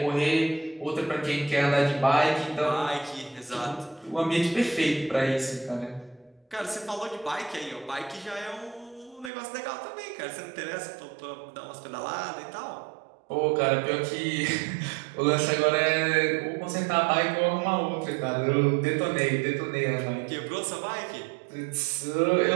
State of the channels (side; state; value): left; drops out; at 9.3 s